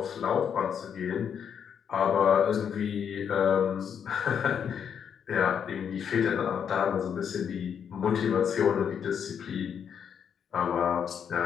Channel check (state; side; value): quieter; right; 7.8 dB